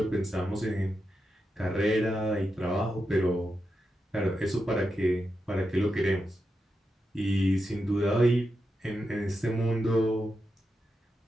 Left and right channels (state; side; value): normal; both; correlation 0.87